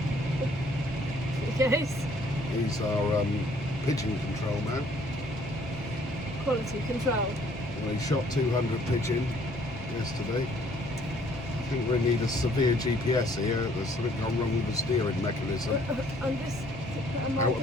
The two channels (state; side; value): normal; both; correlation 0.61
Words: Yes. These are pigeon control now. Quality control. We shot 200 pigeon yesterday. I think we need a severe GPS here. There's something gone wrong with the steering mechanism. I'm just putting my Out of